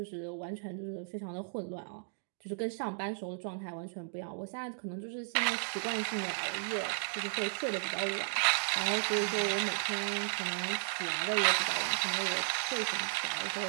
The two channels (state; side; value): silent; left; digital silence